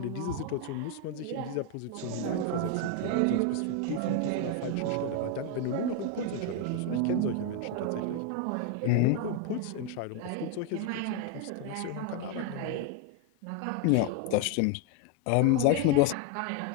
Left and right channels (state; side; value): different; both; correlation 0.01